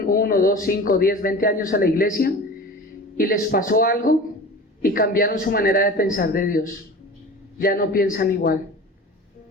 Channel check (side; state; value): both; normal; correlation 0.36